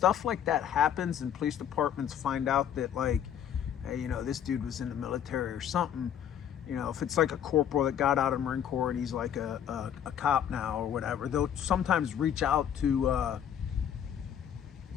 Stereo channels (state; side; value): quieter; right; 9.4 dB